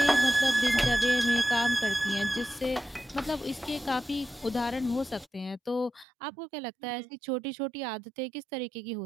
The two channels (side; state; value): left; drops out; at 6.1 s